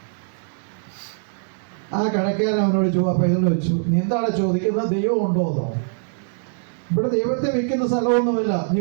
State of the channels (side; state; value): left; silent; digital silence